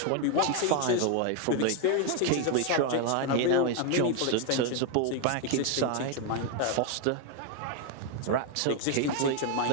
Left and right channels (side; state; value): both; different; correlation 0.01